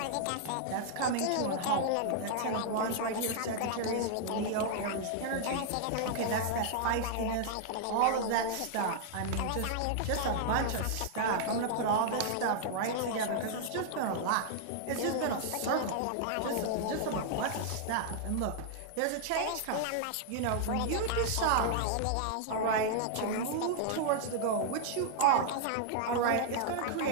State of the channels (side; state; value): both; different; correlation -0.01